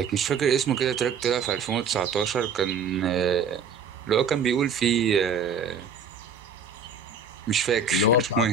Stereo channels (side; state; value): left; quieter; 5.1 dB